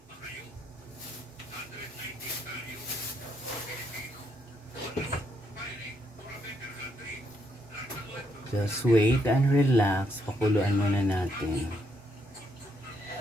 Just wait and relax. Pakuluan muna natin.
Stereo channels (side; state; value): both; normal; correlation 0.75